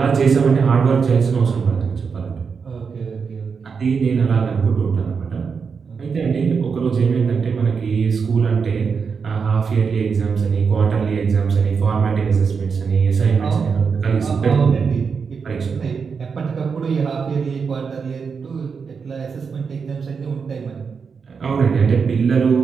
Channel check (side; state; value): left; quieter; 5.7 dB